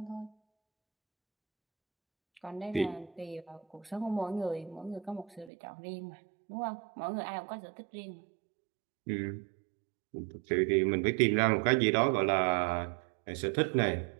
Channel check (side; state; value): left; drops out; at 5.5 s